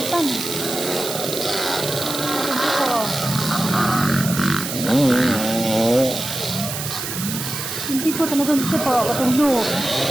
Hindi po tanong ito po. Katunglo.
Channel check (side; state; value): right; noise; hiss, 5 dB below the sound